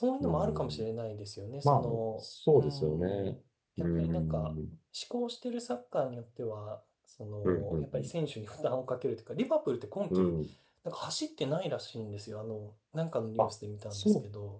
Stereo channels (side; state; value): both; identical; correlation 1.00